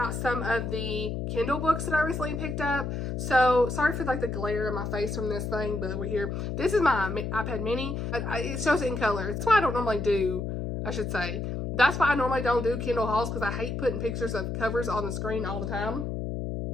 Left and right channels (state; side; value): noise; left; hum, 3 dB below the sound